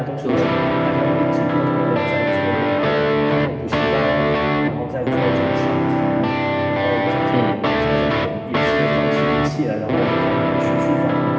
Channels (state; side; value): identical; both; correlation 1.00